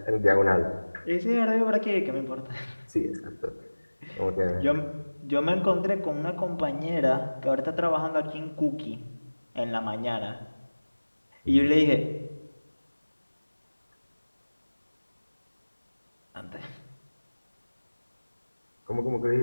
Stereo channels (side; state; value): both; inverted; correlation -1.00